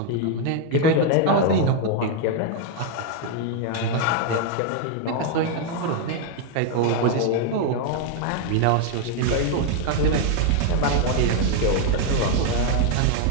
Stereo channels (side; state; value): both; different; correlation 0.01